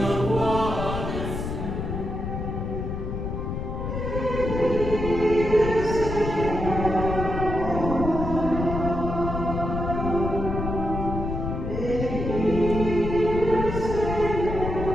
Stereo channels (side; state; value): left; noise; rumble, 4 dB below the sound